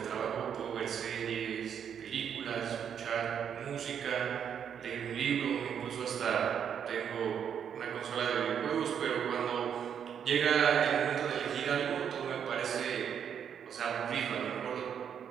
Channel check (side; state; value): left; quieter; 8.2 dB